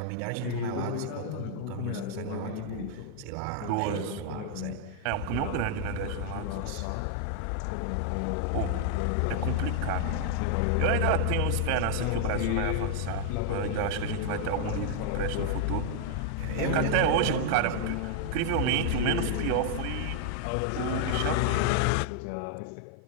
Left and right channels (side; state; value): both; different; correlation 0.00